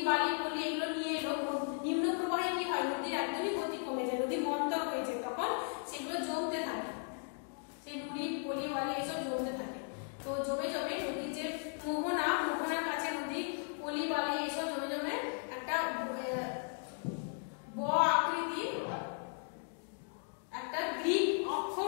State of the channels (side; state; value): right; silent; 53 dB below the other